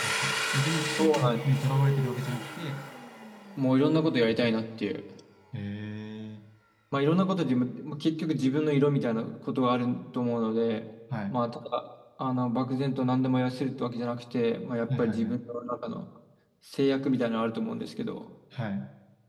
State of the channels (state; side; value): identical; both; correlation 1.00